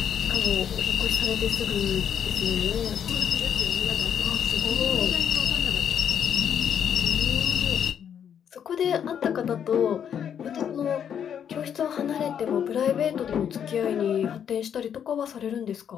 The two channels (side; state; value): right; quieter; 8.5 dB